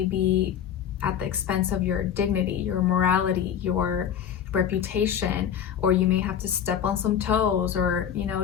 be at the expense of your dignity, your morality, your reputation, or you may have to step on some toes, or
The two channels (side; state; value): right; quieter; 9.0 dB